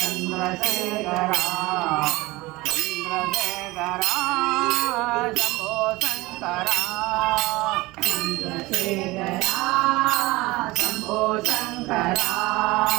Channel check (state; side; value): quieter; left; 21.1 dB